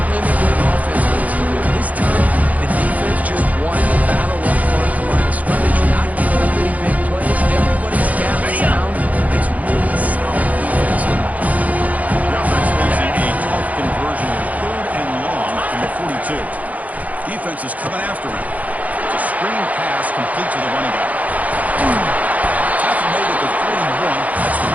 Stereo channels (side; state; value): left; late; 0.074 ms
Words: what an offense needs to do. This time, the defense just won the battle up front at the line of scrimmage. Not giving up any big plays. Everybody's gapped sound. It's really solid defense now. The offense losing a tough conversion in third and long from the 42. Defense is coming after him. It's a screen pass complete to the running back. Tackle made at the 41. That's the